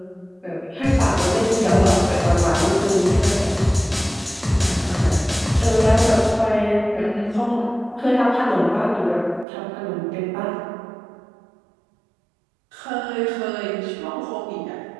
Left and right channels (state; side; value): drops out; left; at 9.5 s